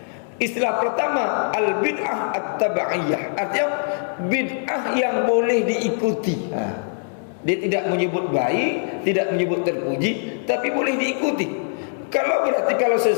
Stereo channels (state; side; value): silent; right; digital silence